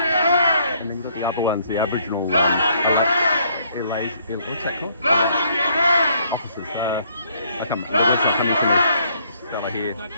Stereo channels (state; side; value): inverted; both; correlation -0.67